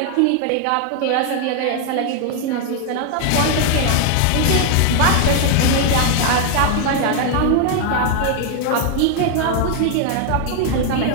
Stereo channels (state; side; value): different; both; correlation 0.00